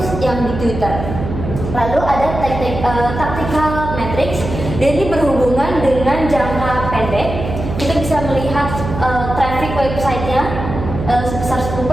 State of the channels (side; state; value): right; noise; hum, 6 dB below the sound